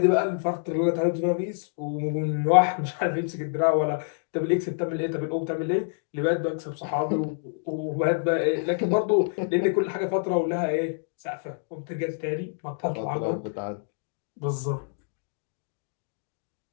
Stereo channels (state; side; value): silent; right; digital silence